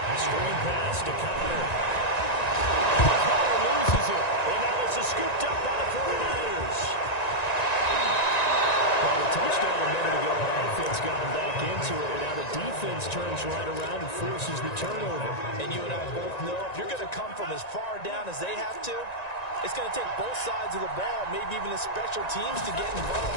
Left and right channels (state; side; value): late; right; 1.9 ms